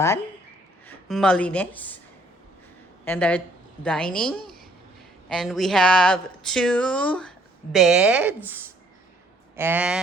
Malinis. And our dining. And we have 2 beds.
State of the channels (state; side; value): normal; both; correlation 0.64